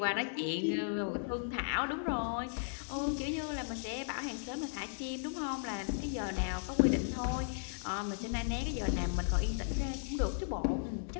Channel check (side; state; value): right; silent; digital silence